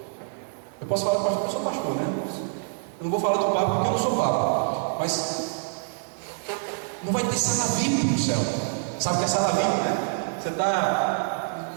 Eu posso falar para pastor, eu sou pastor, né? Eu não vou falar do Papa porque eu não sou Papa. Mas não vai ter sala VIP no céu. Sabe o que é sala VIP, né? Você está.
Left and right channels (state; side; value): silent; left; digital silence